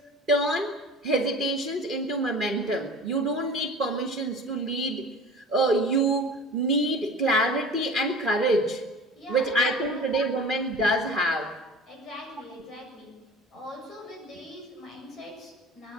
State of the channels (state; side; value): normal; both; correlation 0.39